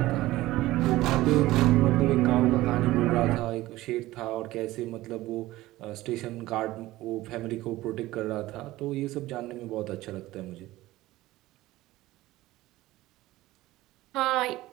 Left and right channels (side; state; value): left; quieter; 17.2 dB